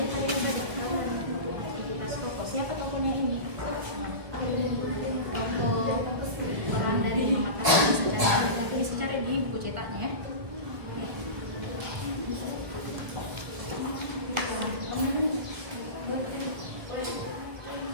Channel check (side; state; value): left; late; 1.6 ms